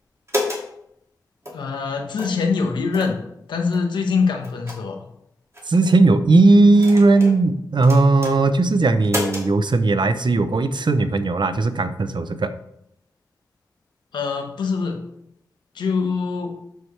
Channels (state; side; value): normal; both; correlation 0.84